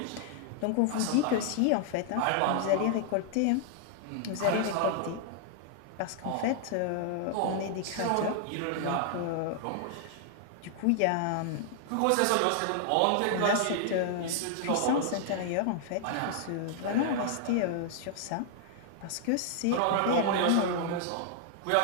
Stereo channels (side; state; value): both; different; correlation 0.00